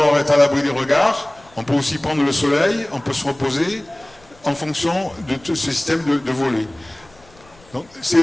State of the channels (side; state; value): left; noise; rumble, 28 dB below the sound